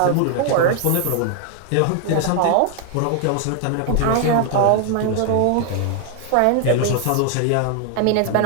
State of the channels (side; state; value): both; different; correlation 0.00